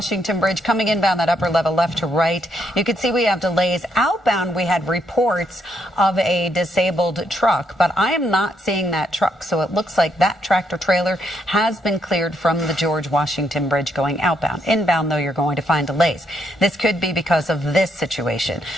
Bridge coming inbound that upper level left to right. You can see we have delays. Outbound, we had reports of a disabled truck, but I am not seeing that truck. So it looks like that tractor trailer has been cleared from the George Washington Bridge going outbound. Inbound, though, you're going to find delays. This could be because of this situation.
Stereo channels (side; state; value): both; normal; correlation 0.75